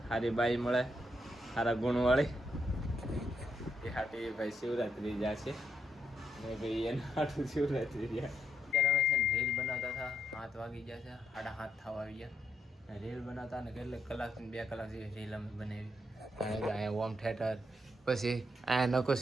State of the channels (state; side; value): normal; both; correlation 0.78